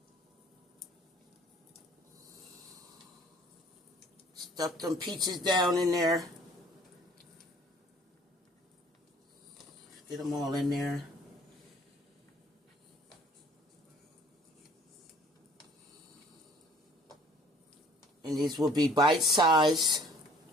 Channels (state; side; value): normal; both; correlation 0.54